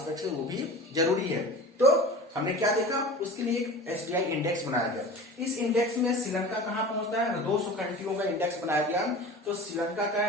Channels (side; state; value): both; normal; correlation 0.36